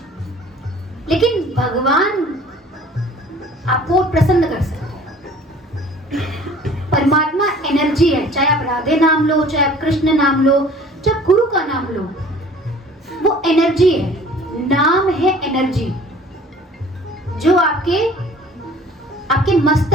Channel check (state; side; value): normal; both; correlation 0.49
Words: लेकिन भगवान आपको प्रसन्न कर सकता है। परमात्मा एनर्जी है, चाहे आप राधे नाम लो, चाहे आप कृष्ण नाम लो, जब गुरु का नाम लो, वो एनर्जी है, नाम है एनर्जी, जो आपके